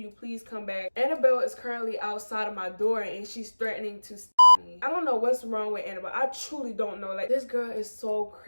please come back? Annabelle is currently outside of my door and she's threatening to me. I don't know what's wrong with Annabelle. I truly don't know. Like, this girl is so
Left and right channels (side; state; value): both; inverted; correlation -1.00